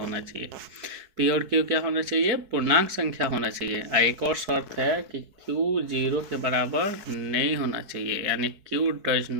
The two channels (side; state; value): left; late; 4.7 ms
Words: चाहिए। P और Q क्या होना चाहिए, पूर्णांक संख्या होना चाहिए। एक और शर्त है कि Q 0 के बराबर नहीं होना चाहिए, यानी Q does